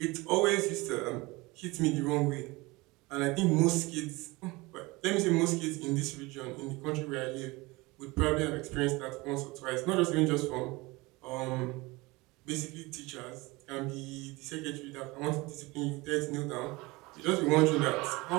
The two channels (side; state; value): left; quieter; 23.0 dB